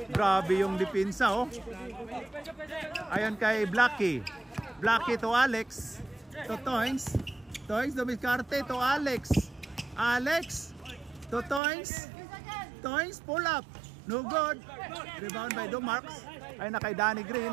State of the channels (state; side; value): drops out; left; at 11.6 s